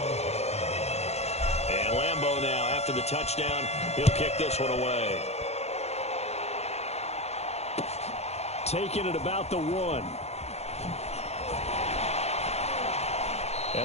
And Lambeau now, after the touchdown, he'll kick this one away. Taking it about the 1.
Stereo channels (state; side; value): late; right; 0.31 ms